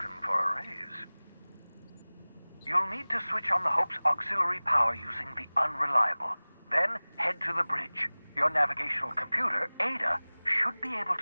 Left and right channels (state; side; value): inverted; both; correlation -1.00